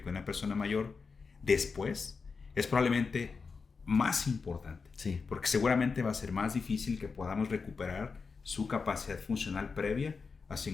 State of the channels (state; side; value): quieter; right; 4.9 dB